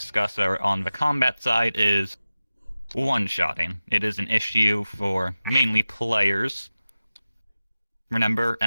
are on the combat side is one-shotting. It is an issue for mainly players. Remember,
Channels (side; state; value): both; inverted; correlation -0.95